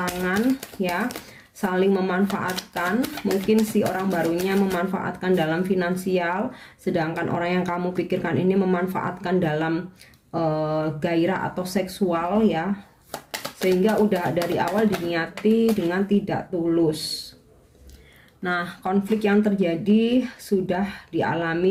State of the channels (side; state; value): both; identical; correlation 1.00